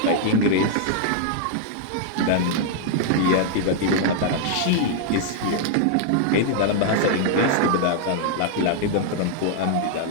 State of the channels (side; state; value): both; different; correlation -0.01